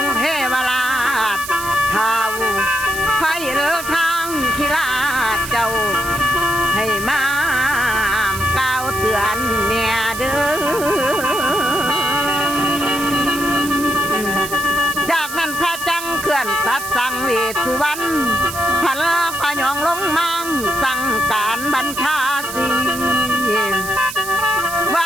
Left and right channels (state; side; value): noise; right; hiss, 10 dB below the sound